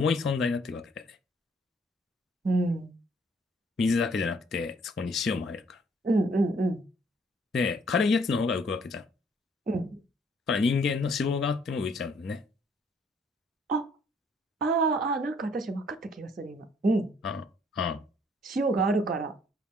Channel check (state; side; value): normal; both; correlation 0.64